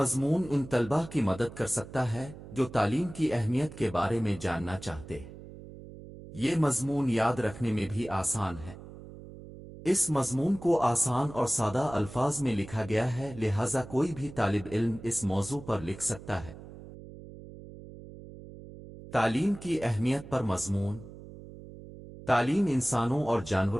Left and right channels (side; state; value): right; noise; hum, 15 dB below the sound